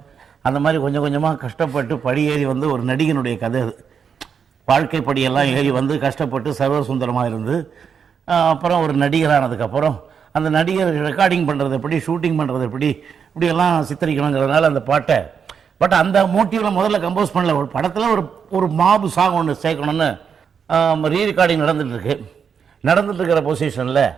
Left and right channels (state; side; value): quieter; left; 6.8 dB